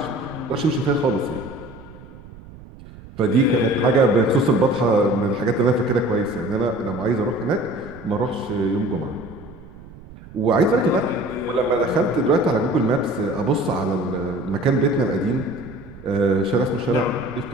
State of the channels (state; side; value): noise; right; rumble, 18 dB below the sound